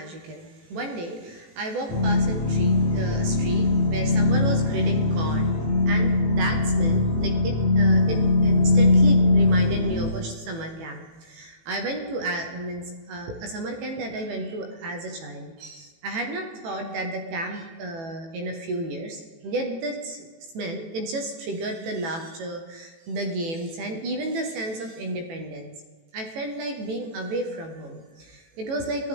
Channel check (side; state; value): left; late; 18 ms